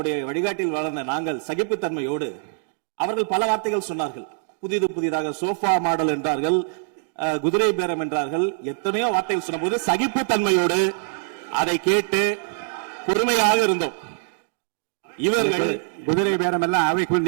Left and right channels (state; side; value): silent; left; digital silence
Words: வழிகாட்டில் வளர்ந்த நாங்கள் சகிப்புத்தன்மையோடு அவர்கள் பல வார்த்தைகள் சொன்னார்கள். புதிதாக சோஃபா மாடல் என்றார்கள், குதிரை பேரம் என்றார்கள், எத்தனையோ வார்த்தைகள் சொன்ன போது சகிப்புத்தன்மையோடு அதை கேட்டு பொறுமையாக இருந்தோம். இவர்கள் குதிரை பேரம் எல்லாம் அவைக்குள்